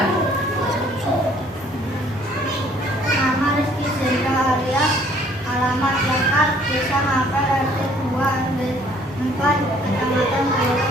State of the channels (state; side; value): normal; both; correlation 0.59